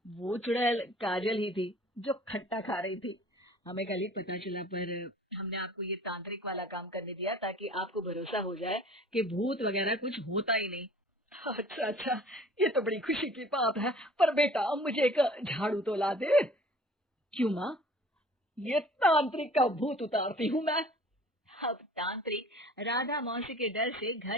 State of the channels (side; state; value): both; normal; correlation 0.49